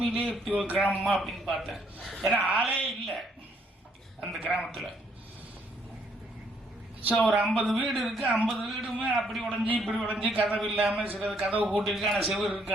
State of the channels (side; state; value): both; normal; correlation 0.69